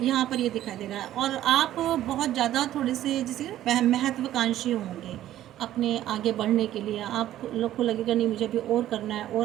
यहाँ पर ये दिखाई दे रहा है। और आप बहुत ज़्यादा थोड़े से जैसे महत्वाकांक्षी होंगे अपने आगे बढ़ने के लिए। आप लोग को लगेगा नहीं, मुझे अभी और करना है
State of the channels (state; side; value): quieter; left; 13.0 dB